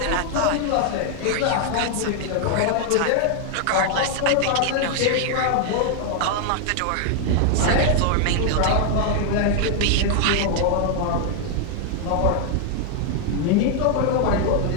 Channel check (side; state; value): both; different; correlation 0.00